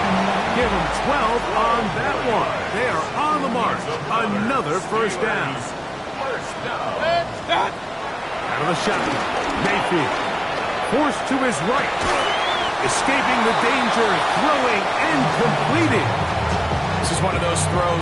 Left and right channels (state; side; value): identical; both; correlation 1.00